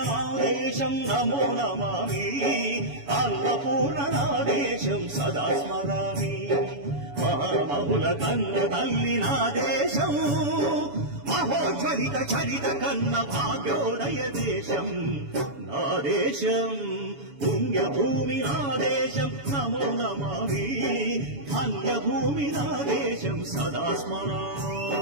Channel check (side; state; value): left; late; 7.0 ms